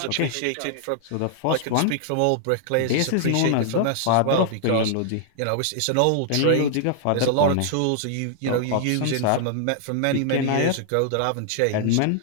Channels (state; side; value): different; both; correlation 0.00